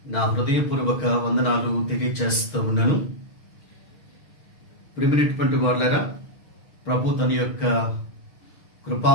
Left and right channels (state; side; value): late; right; 6.4 ms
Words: నా హృదయపూర్వక వందనాలు తెలియజేస్తూ ఉన్నాను. ప్రియమైనటువంటి వారులారా, ప్రభు తన యొక్క కృపా